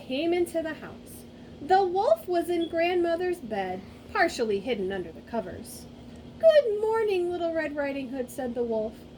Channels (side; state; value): both; identical; correlation 1.00